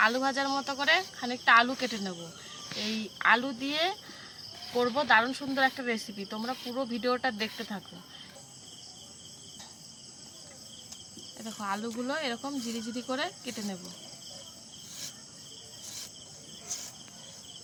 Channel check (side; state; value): both; identical; correlation 1.00